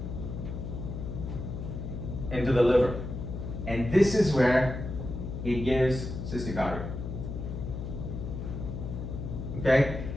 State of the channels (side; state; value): left; noise; hum, 6 dB below the sound